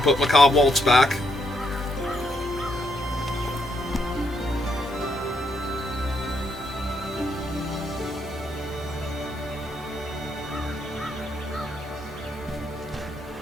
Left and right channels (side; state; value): both; normal; correlation 0.76